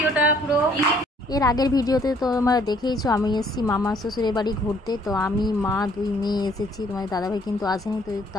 পুরো। এর আগের ভিডিওতে তো তোমরা দেখেইছো আমি এসেছি মামা শ্বশুরের বাড়ি ঘুরতে। তো আমি মা দুই মেয়ে এসেছি, তোমার দাদাভাই কিন্তু আসেনি। তো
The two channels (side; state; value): both; normal; correlation 0.62